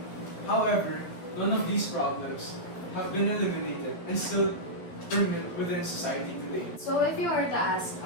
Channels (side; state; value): right; late; 11 ms